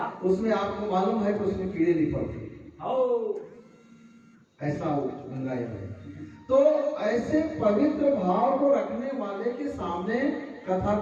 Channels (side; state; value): both; identical; correlation 1.00